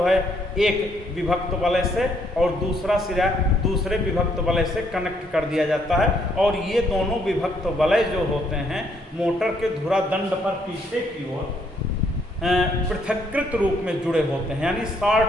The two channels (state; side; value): normal; both; correlation 0.70